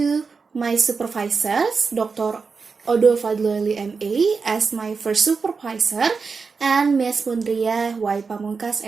my supervisors, Dr. Odo Fadloeli M.A. as my first supervisor, and Ms. Mundriyah Y. Pamungkas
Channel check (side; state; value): left; quieter; 4.9 dB